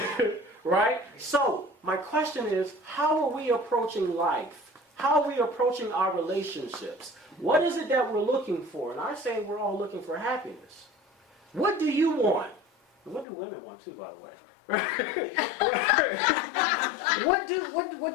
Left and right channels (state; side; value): drops out; right; at 13.2 s